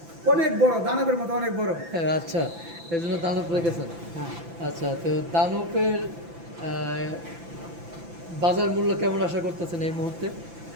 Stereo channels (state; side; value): late; left; 5.9 ms